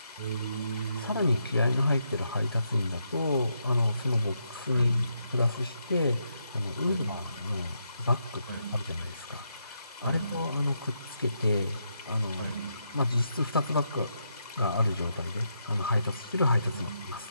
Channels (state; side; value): inverted; both; correlation -0.80